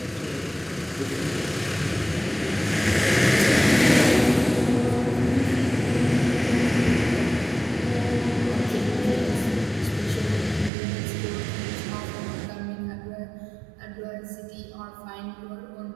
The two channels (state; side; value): drops out; left; at 10.7 s